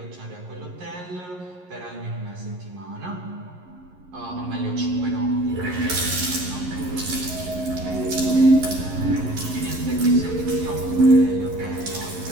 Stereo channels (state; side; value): late; left; 11 ms